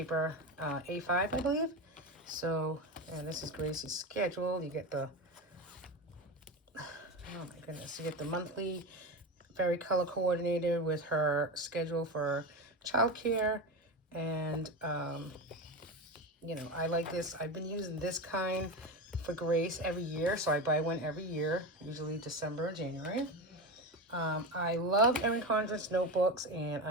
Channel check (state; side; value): normal; both; correlation 0.20